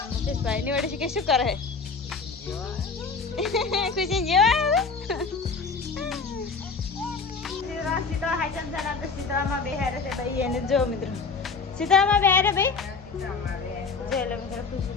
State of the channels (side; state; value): right; quieter; 4.7 dB